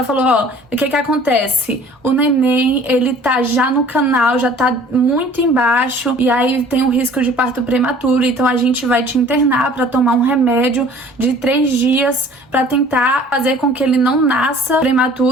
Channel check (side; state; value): both; normal; correlation 0.50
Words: falou, ó, o que acontece? O neném, ele tá já no canal, já tá muito embaixo, e aí tem um risco de parto prematuro, então a gente vai te internar pra tomar um remédio de 3 dias pra tentar fazer com que ele não nasça